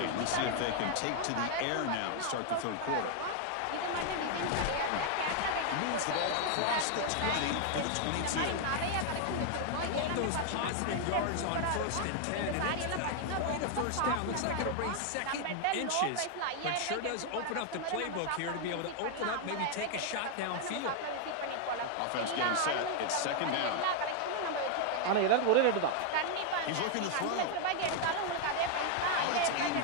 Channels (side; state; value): both; different; correlation 0.00